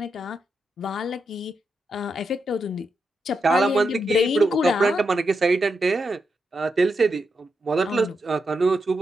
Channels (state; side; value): normal; both; correlation 0.84